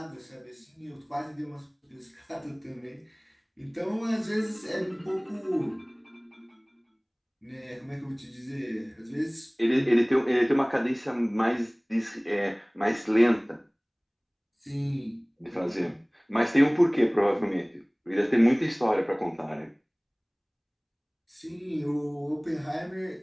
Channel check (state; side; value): identical; both; correlation 1.00